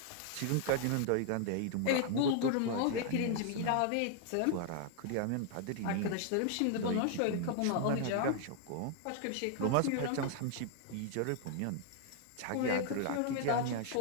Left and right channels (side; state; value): both; different; correlation 0.00